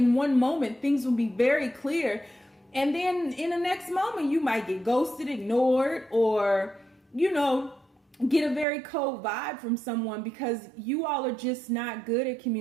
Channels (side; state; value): left; drops out; at 8.7 s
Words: one moment, things will be very clear. And then in the next moment, you might get ghosted, ignored, or, get a very cold vibe from someone because you all are just not good at